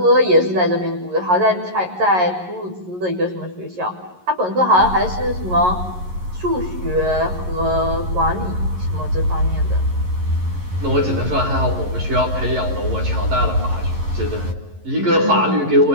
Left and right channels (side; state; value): left; late; 11 ms